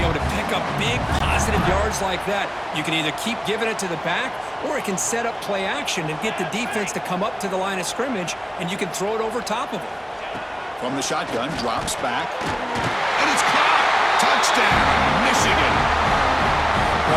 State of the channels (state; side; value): identical; both; correlation 1.00